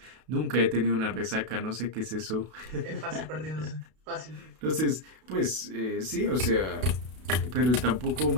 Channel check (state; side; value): late; left; 32 ms